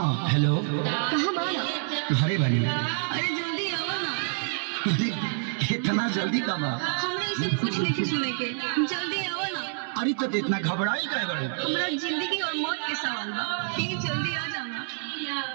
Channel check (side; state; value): left; silent; 60 dB below the other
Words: हेलो, कहाँ बाना? घरे बानी। अरे जल्दी आओ ना। अरे इतना जल्दी कब आ? हमरा ये सब कुछ नहीं सुने के, जल्दी आओ ना। अरे तो इतना घबराई काहे बाड़ू? हमरा जिंदगी और मौत के सवाल बा, ठीक जल्दी आ जाना।